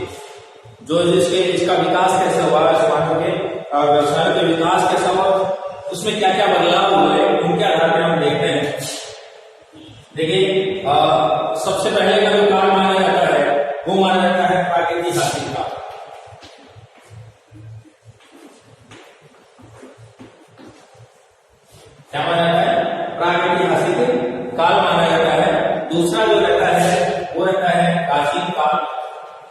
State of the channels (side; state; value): both; identical; correlation 1.00